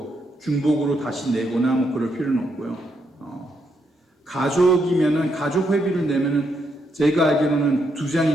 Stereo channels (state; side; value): normal; both; correlation 0.78